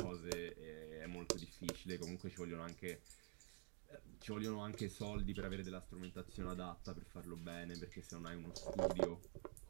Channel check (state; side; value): quieter; left; 39.8 dB